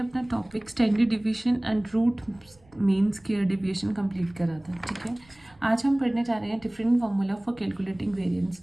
topic standard division and root mean square deviation complete करा था। ठीक है, आज हम पढ़ने जा रहे हैं different formula for calculating variance.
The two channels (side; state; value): right; noise; rumble, 29 dB below the sound